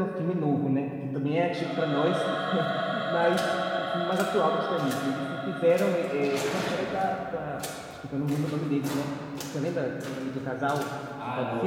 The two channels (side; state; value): both; identical; correlation 1.00